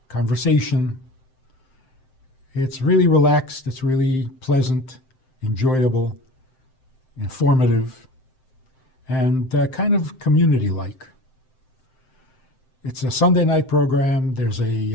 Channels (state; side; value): late; right; 7.7 ms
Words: conversation. It's really relaxed, it's really pleasant, enjoyable, informative, and kind of community-like. It's a Sunday night program. There's